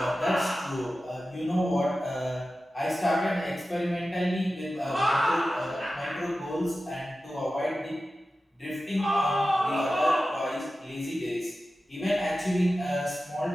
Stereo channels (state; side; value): normal; both; correlation 0.94